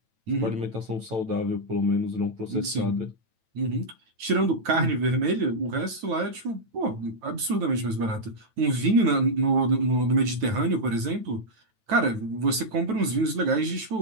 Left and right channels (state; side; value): late; left; 9.1 ms